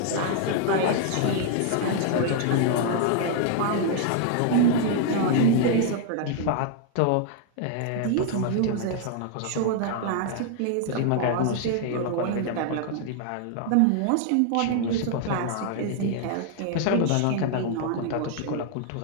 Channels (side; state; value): both; different; correlation 0.00